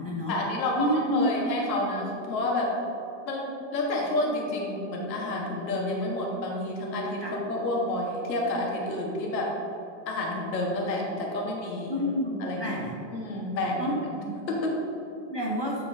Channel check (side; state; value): right; late; 1.4 ms